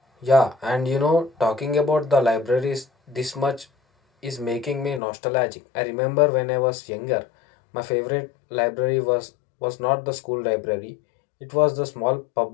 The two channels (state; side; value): drops out; right; at 5.0 s